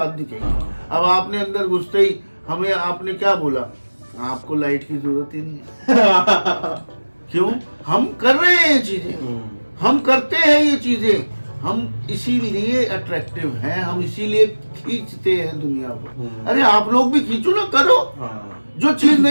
दिखेगी। अब आपने अंदर घुसते ही हमें आपने क्या बोला? आपको लाइट की जरूरत ही नहीं है। क्यों? हम कर रहे हैं ये चीजें, हम करते हैं ये चीजें, हम इसीलिए अट्रैक्टिव हैं, हम इसीलिए खींचते हैं दुनिया को। अरे आप लोग भी खींचो ना, करो। जो चीज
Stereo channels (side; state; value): both; inverted; correlation -1.00